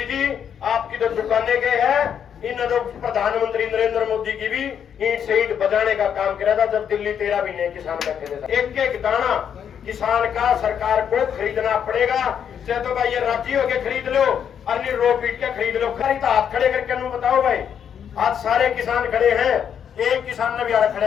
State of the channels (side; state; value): right; quieter; 8.3 dB